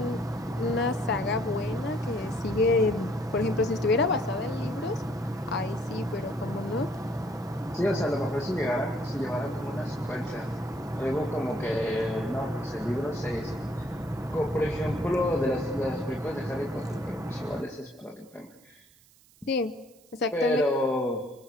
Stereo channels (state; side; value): noise; right; hiss, 28 dB below the sound